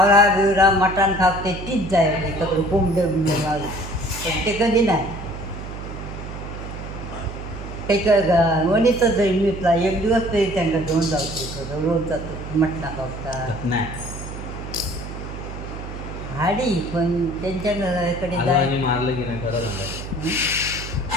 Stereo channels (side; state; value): right; noise; hum, 10 dB below the sound